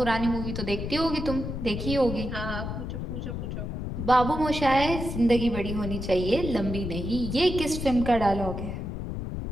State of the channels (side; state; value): left; noise; rumble, 5 dB below the sound